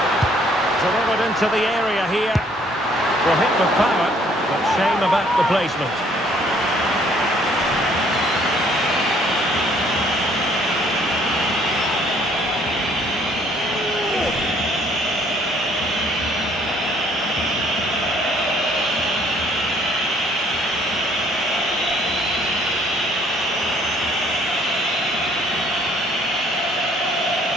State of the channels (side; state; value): both; normal; correlation 0.62